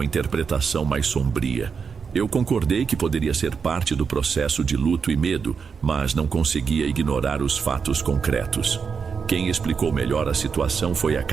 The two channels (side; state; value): left; quieter; 5.9 dB